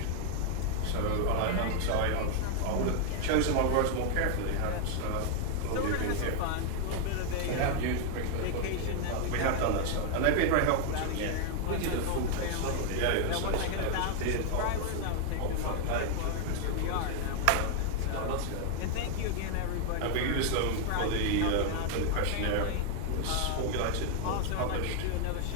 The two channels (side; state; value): both; different; correlation 0.00